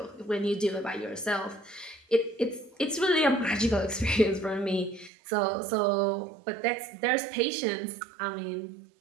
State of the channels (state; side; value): drops out; left; at 5.1 s